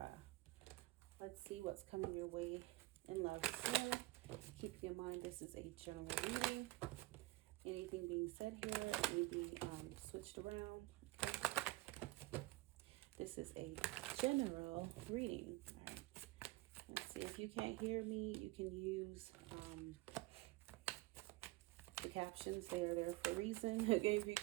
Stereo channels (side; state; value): left; quieter; 20.6 dB